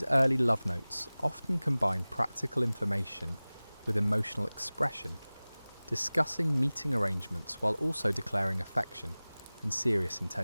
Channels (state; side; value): inverted; both; correlation -0.99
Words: early love notes often combine practical information with emotional expression, discussing meeting arrangements while also declaring affection and serious